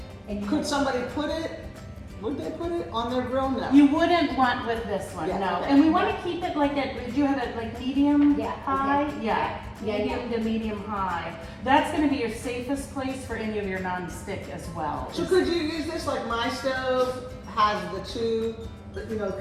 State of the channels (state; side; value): identical; both; correlation 1.00